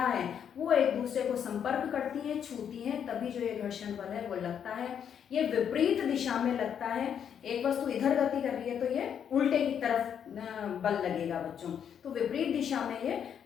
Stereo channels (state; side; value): quieter; right; 8.3 dB